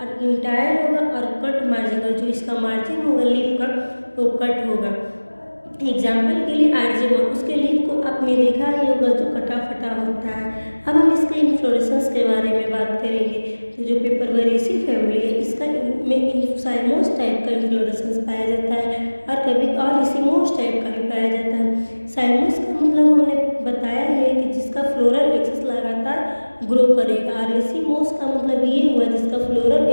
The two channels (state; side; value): inverted; both; correlation -1.00